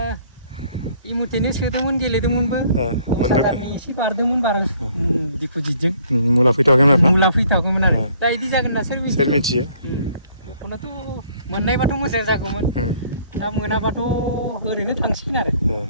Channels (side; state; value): both; inverted; correlation -0.61